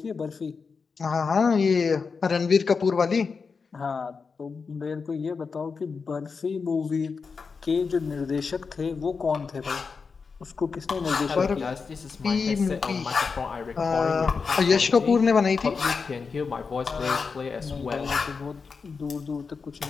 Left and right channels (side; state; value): right; quieter; 5.1 dB